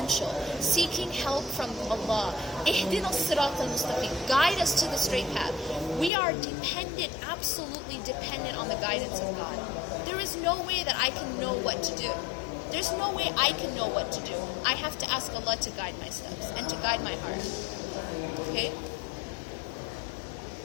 Seeking help from Allah. Ihdina as-sirat al-mustaqim. Guide us to the straight path. We are dependent, absolutely dependent on the guidance of God. There is no way that I can know what to do. There's no way I can know what to do. I have to ask Allah to guide my steps and to guide my heart. Okay?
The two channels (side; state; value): right; drops out; at 6.1 s